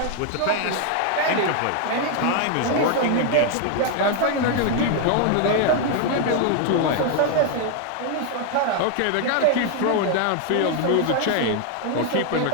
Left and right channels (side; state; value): both; different; correlation 0.00